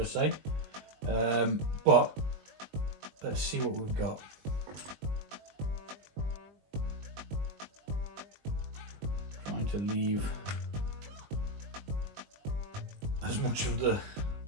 I say. But let's see what we've got. Trying to leave as much of the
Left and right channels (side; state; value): left; late; 20 ms